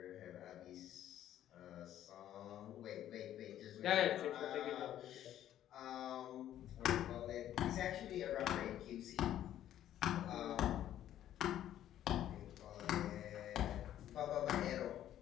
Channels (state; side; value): quieter; right; 11.7 dB